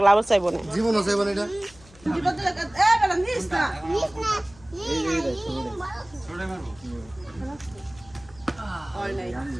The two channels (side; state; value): left; noise; hum, 24 dB below the sound